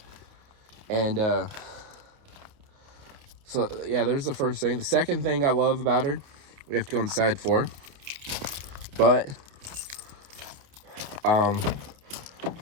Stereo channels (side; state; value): left; late; 29 ms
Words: And so yeah, there's the first thing. The second thing I love about her, we have to go inside for, but